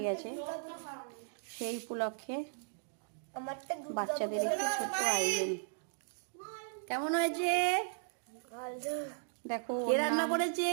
গেছে। সেই উপলক্ষে বাচ্চাদের একটি ছোট্ট আয়োজন। কেমন হয়েছে দেখো। কে রান্না করেছে?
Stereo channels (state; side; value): silent; left; digital silence